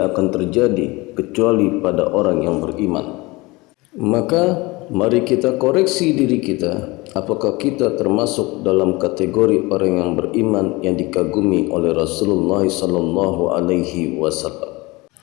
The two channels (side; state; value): right; quieter; 23.1 dB